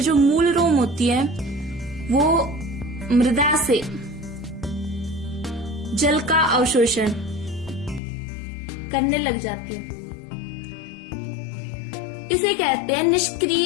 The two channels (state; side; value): drops out; right; at 8.0 s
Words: जो मूल रोम होती है वो मृदा से जल का अवशोषण करने लग जाती है। इसे कहते हैं